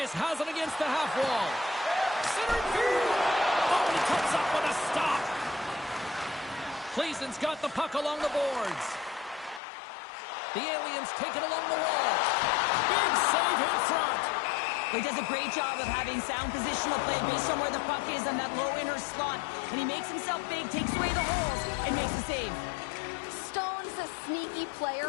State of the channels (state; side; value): drops out; right; at 9.6 s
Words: has it against the half wall. Centering field. Oh, he comes up with a stop. Gleason's got the puck along the boards. The Aliens take it along the wall. Big save in front. He does a great job of having sound positional play based on where the puck is on that low inner slot. And he makes himself big, takes away the holes, and makes the save. Stone's a sneaky